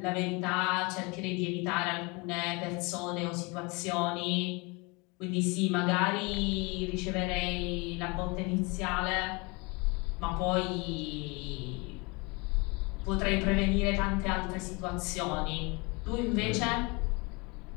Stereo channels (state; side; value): quieter; right; 28.1 dB